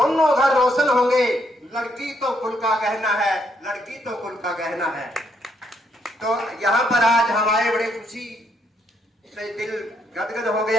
घर रोशन होंगे। लड़की तो कुल का गहना है, लड़की तो कुल का गहना है। तो यहाँ पर आज हमारे बड़े खुशी से दिल गदगद हो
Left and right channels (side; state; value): both; normal; correlation 0.74